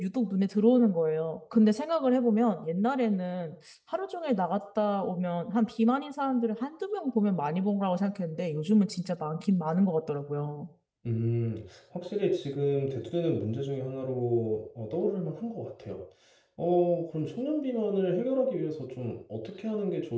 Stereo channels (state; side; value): identical; both; correlation 1.00